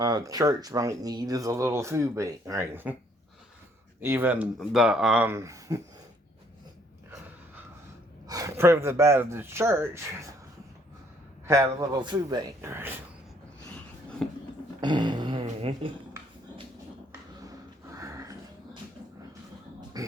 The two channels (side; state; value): both; normal; correlation 0.65